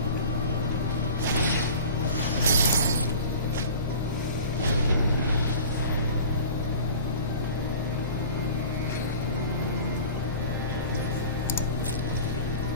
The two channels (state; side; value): inverted; both; correlation -0.41